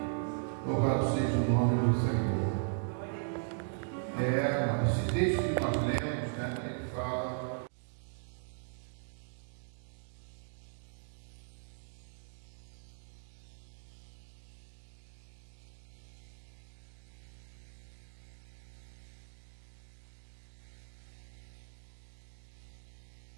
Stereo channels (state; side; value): silent; left; digital silence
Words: Louvado seja o nome do Senhor. Esse texto que nós lemos, né, ele fala que Tiago diz que é por motivo de alegria passar por provações. Né? Por quê, amados? Porque eu lembro quando eu estava no meu primário